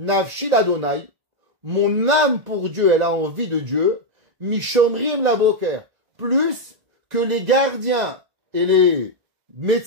l'Adonai, mon âme pour Dieu, elle a envie de Dieu, Mishomrim la boker, plus que les gardiens et les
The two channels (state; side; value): late; left; 1.9 ms